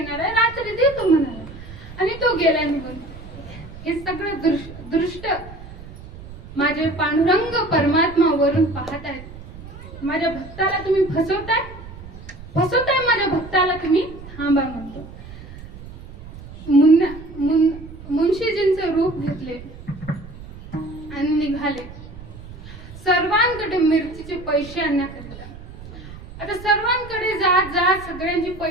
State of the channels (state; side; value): noise; right; rumble, 15 dB below the sound